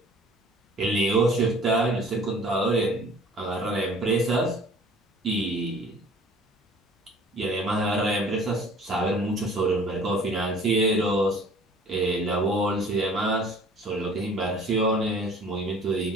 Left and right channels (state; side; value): normal; both; correlation 0.50